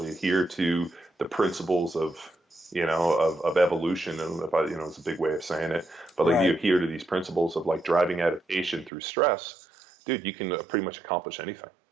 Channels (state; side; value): drops out; left; at 8.9 s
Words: adhere to the principles of evolution, and it's a big way of saying it, but like, right, you adhere to these principles of like driving adaptation through stress, dude, you can pretty much accomplish anything.